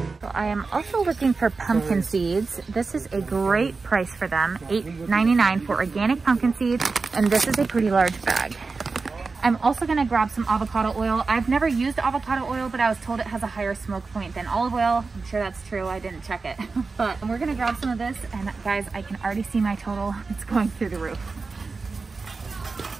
I am also looking for pumpkin seeds. This is a great price for them, $8.99 for organic pumpkin seeds, and this is a pretty large bag. I'm also gonna grab some avocado oil. I've never used avocado oil, but I was told it has a higher smoke point than olive oil. I'm sure that's true, I didn't check it. But we're gonna grab some of this, and guys, I can already see my total. It's going through the roof.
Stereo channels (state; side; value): quieter; left; 4.2 dB